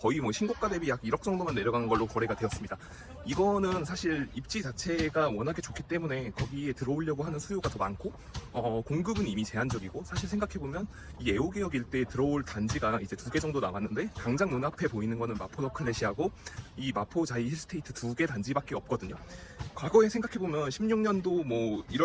뭐 신고가 대비 약 1억 정도만 내려간 걸로 거래가 되었습니다. 이거는 사실 입지 자체가 워낙에 좋기 때문에 거기에 들어오려고 하는 수요가 더 많고, 공급은 이미 제한적이고, 사실 생각해보면 이 애호개역 일대에 들어올 단지가 이제 2개 정도 남았는데, 당장 눈앞에 보이는 거는 마포 너클렛이하고 이 마포 자이 힐스테이트 2개 단지밖에 없거든요. 과거에 생각해보면 16년도 뭐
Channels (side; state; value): both; identical; correlation 1.00